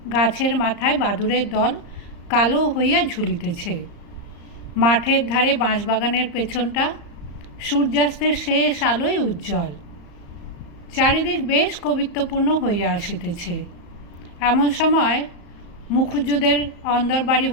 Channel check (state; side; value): late; right; 35 ms